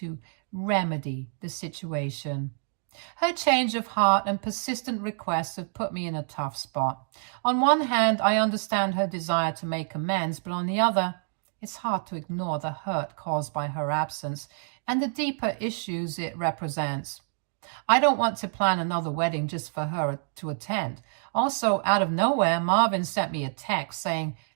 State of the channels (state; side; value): silent; left; 59 dB below the other